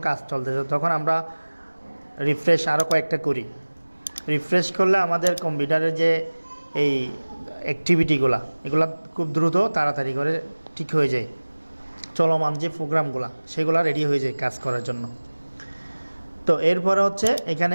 কাজ চলতেছে, তখন আমরা রিফ্রেশ আরও কয়েকটা করি। রিফ্রেশ করলে আমাদের কম্পিউটারের যে এই অ্যাক্টিভিটিগুলো, এগুলো খুব দ্রুত তাড়াতাড়ি করে ঠিক হয়ে যায়, চলমান যে প্রোগ্রামগুলো সেগুলো রেডি হয়ে যায় কাজ করার জন্য। তো এরপরে হচ্ছে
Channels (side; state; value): both; inverted; correlation -1.00